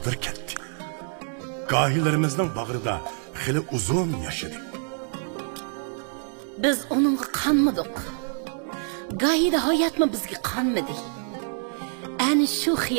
ketdi. Gahilerimizning bag'rida xili uzun yaşadı. Biz onunla kanmadık. Gayede hayat mı bizge kanmadı. Yani şu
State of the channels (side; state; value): left; silent; 61 dB below the other